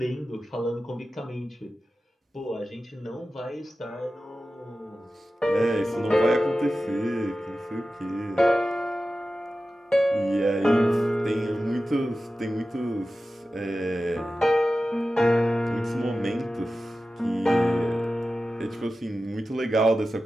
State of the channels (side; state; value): both; normal; correlation 0.94